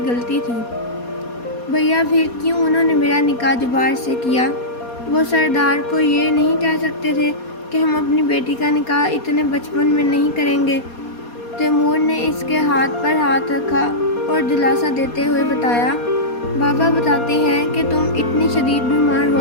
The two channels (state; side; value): late; right; 4.2 ms